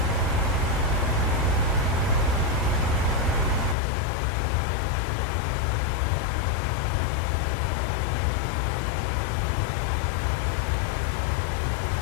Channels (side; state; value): right; drops out; at 3.8 s